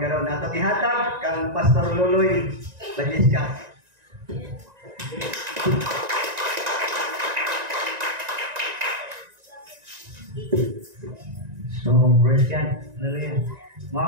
Ato gihatag kang Pastor Luloy Bagisca. So, praise God. Hallelujah.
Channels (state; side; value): late; left; 1.9 ms